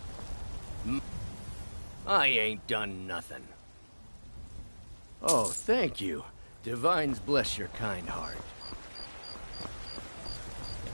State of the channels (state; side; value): inverted; both; correlation -1.00